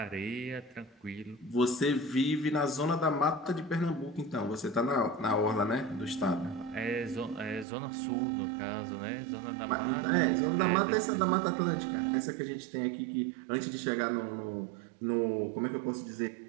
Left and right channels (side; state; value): left; drops out; at 7.7 s